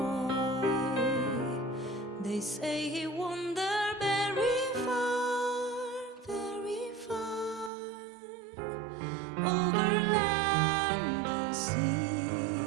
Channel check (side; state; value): left; drops out; at 7.7 s